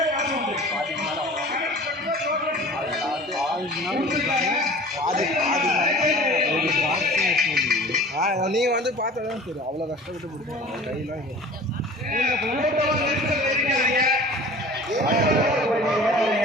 நீங்கள் வந்து பார்த்தா தான் தெரியும். அவ்வளோ கஷ்டப்பட்டு பிடிக்கும் கையெல்லாம்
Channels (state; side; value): normal; both; correlation 0.43